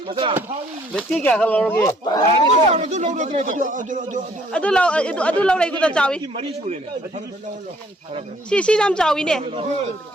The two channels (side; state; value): both; normal; correlation 0.62